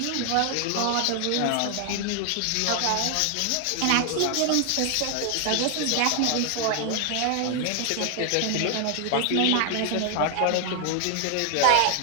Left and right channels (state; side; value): different; both; correlation 0.00